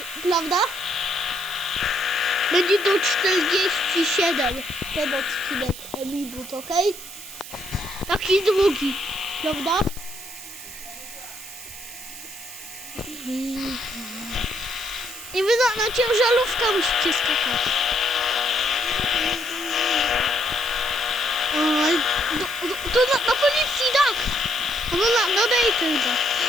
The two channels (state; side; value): noise; right; hiss, 13 dB below the sound